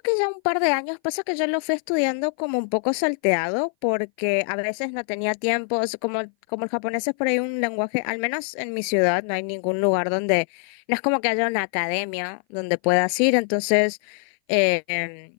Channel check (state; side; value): silent; right; 58 dB below the other